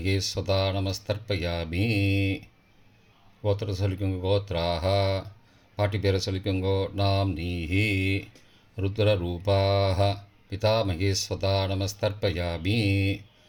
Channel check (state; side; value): identical; both; correlation 1.00